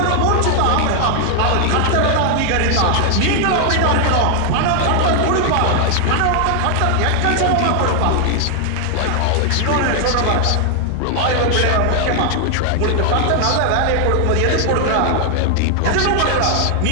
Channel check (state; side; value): different; both; correlation 0.00